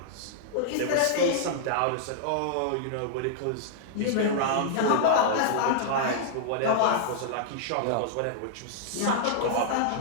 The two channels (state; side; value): different; both; correlation -0.01